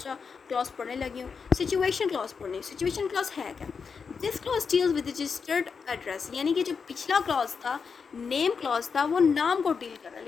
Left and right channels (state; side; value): quieter; right; 5.7 dB